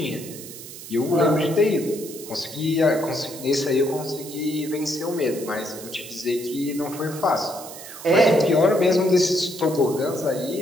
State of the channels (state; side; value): noise; right; hiss, 14 dB below the sound